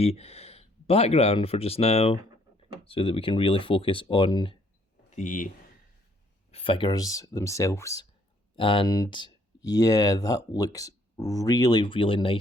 background for just now, so that we can really focus on the figures themselves. And yeah, that looks really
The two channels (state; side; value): normal; both; correlation 0.65